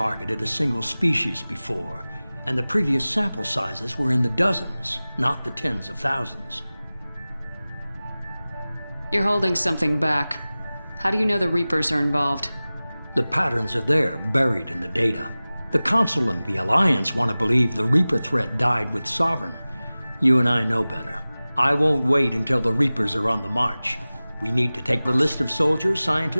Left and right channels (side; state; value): both; inverted; correlation -0.98